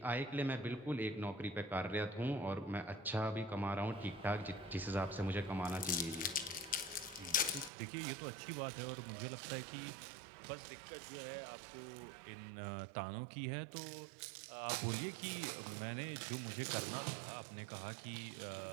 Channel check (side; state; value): left; drops out; at 7.7 s